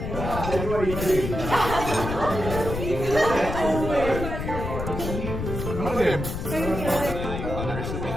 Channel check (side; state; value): left; noise; rumble, 5 dB below the sound